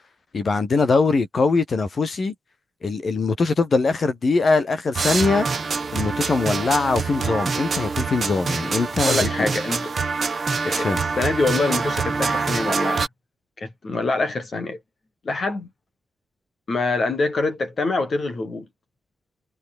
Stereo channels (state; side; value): normal; both; correlation 0.85